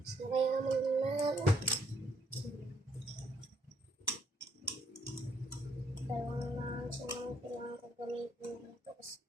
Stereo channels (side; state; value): both; normal; correlation 0.71